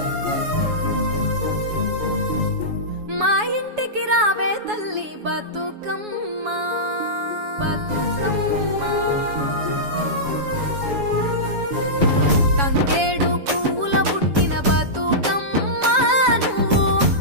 మా ఇంటికి రావే తల్లి బతుకమ్మ బతుకమ్మ తంగేడు పూల పుట్టిన బతుకమ్మ నువ్వు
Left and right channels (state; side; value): late; left; 7.1 ms